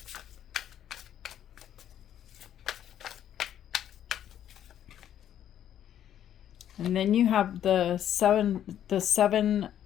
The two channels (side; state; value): right; quieter; 10.5 dB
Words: And then you have the seven